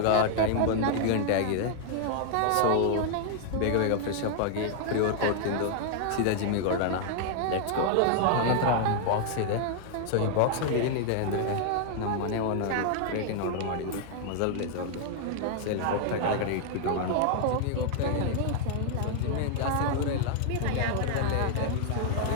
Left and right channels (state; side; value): different; both; correlation 0.00